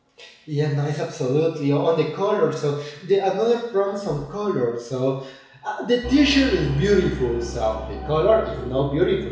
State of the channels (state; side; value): identical; both; correlation 1.00